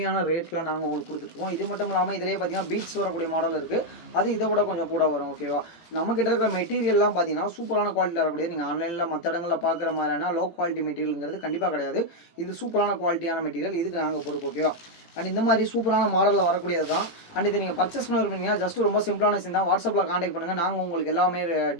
ரேட்டில் நாங்கள் உங்களுக்கு கொடுத்துட்ருக்கோம். இது மட்டும் இல்லாமல் இதிலே பார்த்திங்கன்னா பீட்ஸ் வரக்கூடிய மாடல் இருக்குது. அது இதை விட கொஞ்சம் கூட வரும். ஓகேவா, நம்மக்கிட்ட இருக்கிற மெட்டீரியல்லாம் பார்த்தீங்கன்னா சூப்பரான குவாலிட்டியில் வரக்கூடிய, நீங்கள் ஆன்லைனில் மற்ற இடங்களில் பார்க்குற மாதிரியான லோ குவாலிட்டி மெட்டீரியலுங்கிறது கண்டிப்பாக கிடையாது. இது சூப்பரான குவாலிட்டியான மெட்டீரியல், இதுக்கு நாங்கள் பொறுப்பு. ஓகேவா, அண்ட் இந்த மாதிரி சூப்பரான மாடலில் வரக்கூடியது தான். அண்ட் இது நீங்கள் பர்ச்சேஸ் பண்ணிருப்பீங்கன்னா ஜஸ்ட் ரொம்ப சிம்பிளான விஷயம் தான். வாட்ஸ்அப்பில் காண்டாக்ட் பண்ணுங்கள். நாங்கள் உங்களுக்கு எல்லாமே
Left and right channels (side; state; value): right; late; 18 ms